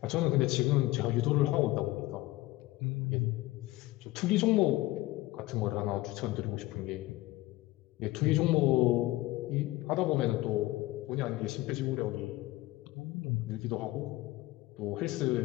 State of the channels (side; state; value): right; quieter; 18.4 dB